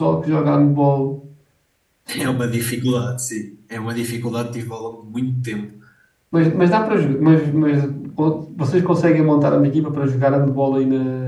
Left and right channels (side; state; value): both; identical; correlation 1.00